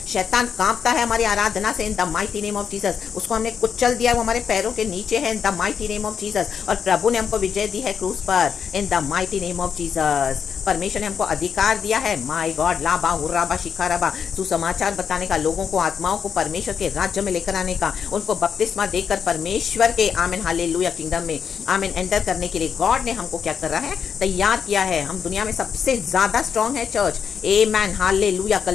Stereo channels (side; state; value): right; quieter; 7.1 dB